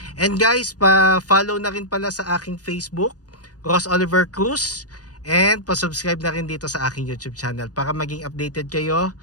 And guys, pa-follow na rin pala sa aking Facebook, Ross Oliver Cruz, and pa-subscribe na rin dito sa aking YouTube channel para maging updated kayo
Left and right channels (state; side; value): late; right; 0.68 ms